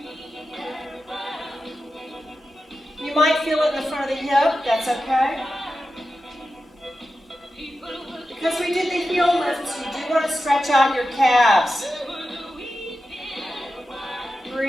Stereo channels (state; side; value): normal; both; correlation 0.91